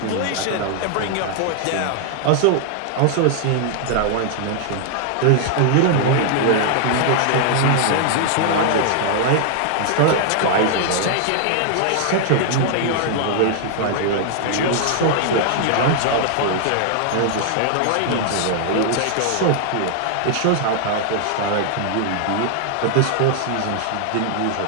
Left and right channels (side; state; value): both; different; correlation 0.00